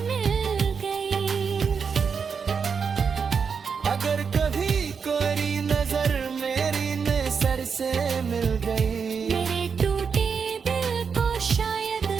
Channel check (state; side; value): quieter; left; 6.0 dB